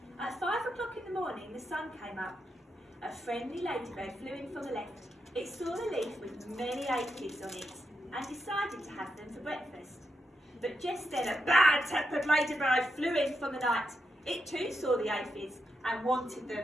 At 5 o'clock in the morning the sun came up. A friendly ladybird flew in from the left. It saw a leaf with many aphids on it and decided to have them for breakfast. But just then a bad-tempered ladybird flew in from the night. It too saw the aphids and wanted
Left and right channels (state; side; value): normal; both; correlation 0.84